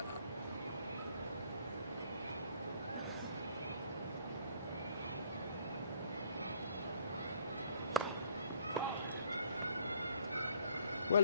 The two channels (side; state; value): both; inverted; correlation -0.60